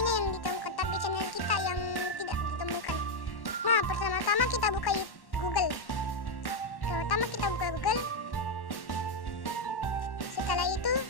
yang ditemukan, tapi channel kita yang tidak ditemukan. Nah, pertama-tama kita buka Google. Pertama kita buka Google. Setelah itu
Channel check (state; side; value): late; right; 1.1 ms